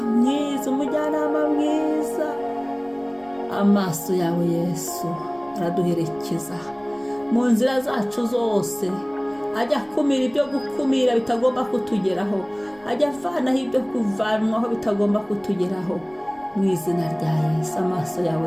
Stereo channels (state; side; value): noise; left; rumble, 29 dB below the sound